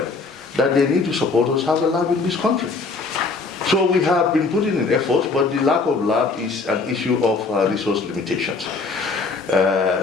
that they need to support us have a lab in this country. So we have been putting in efforts, but the lack of lab is an issue of resource limitations.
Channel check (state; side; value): quieter; right; 4.1 dB